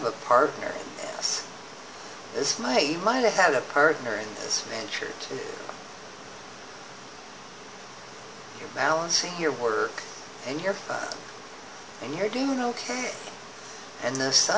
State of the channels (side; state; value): both; identical; correlation 1.00